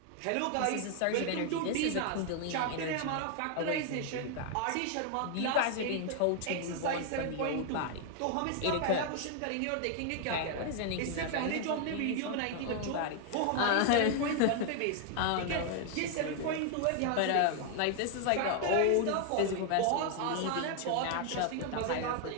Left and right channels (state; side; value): different; both; correlation 0.00